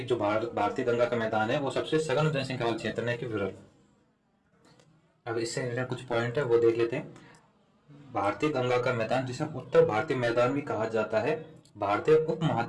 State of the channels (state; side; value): identical; both; correlation 1.00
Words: जो भारतीय गंगा का मैदान है वो सबसे सघन जनसंख्या वाला क्षेत्र है कि विरल। अब इससे रिलेटेड कुछ पॉइंट है वो देख लेते हैं। भारतीय गंगा का मैदान, जिसे उत्तर भारतीय मैदान भी कहा जाता है, भारतीय